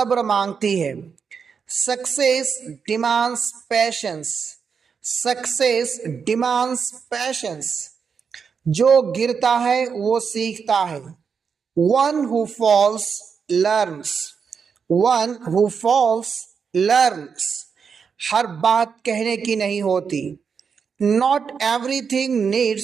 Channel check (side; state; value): left; quieter; 6.2 dB